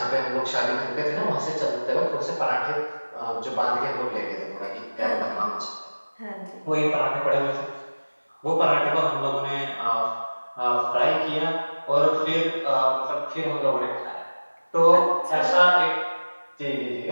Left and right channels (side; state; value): both; inverted; correlation -1.00